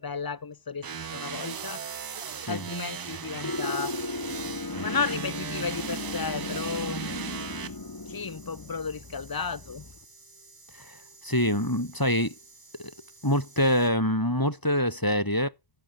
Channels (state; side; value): late; right; 1.0 ms